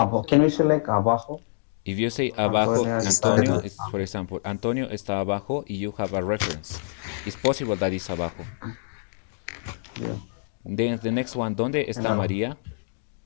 Can we select abajo? If you say abajo, Antonio Antonio. is, for example, Antonio está abajo, y you have a reference. It's possible that it's abajo. Yeah. Then the next one, ¿dónde está María?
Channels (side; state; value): right; silent; digital silence